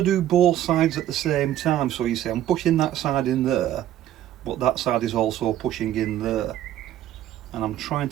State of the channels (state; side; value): quieter; left; 12.2 dB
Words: do both sides at the same time. So you see I'm pushing that side in there, but that side is also pushing in there, and I'm trying